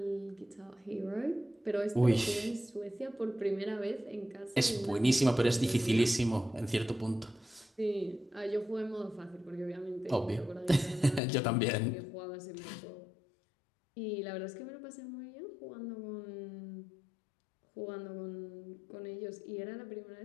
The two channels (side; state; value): right; drops out; at 11.2 s